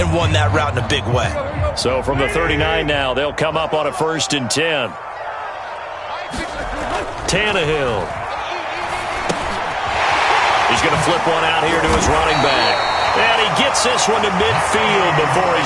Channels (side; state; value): both; identical; correlation 1.00